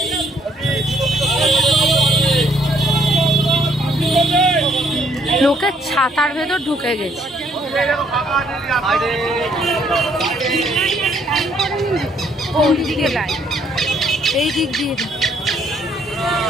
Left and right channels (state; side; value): normal; both; correlation 0.67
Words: লোকের ছাতার ভেতর ঢুকে গেছে। কোন দিকে লাইন? এই দিক দিয়ে।